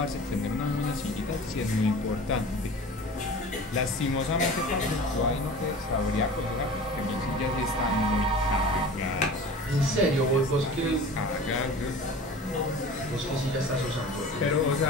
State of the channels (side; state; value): both; normal; correlation 0.38